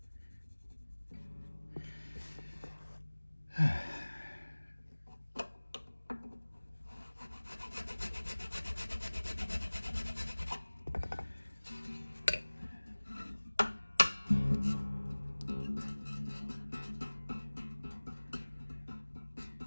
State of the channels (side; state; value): both; inverted; correlation -1.00